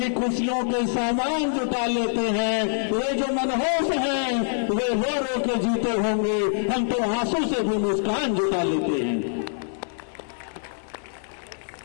खुशियों के सामान जुटा लेते हैं। वे जो मनहूस हैं वे रो रो के जीते होंगे, हम तो आंसू से भी मुस्कान जुटा लेते हैं।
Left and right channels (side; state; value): right; silent; 62 dB below the other